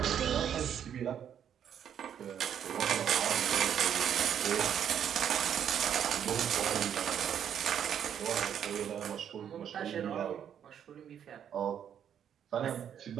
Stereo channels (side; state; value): left; quieter; 9.0 dB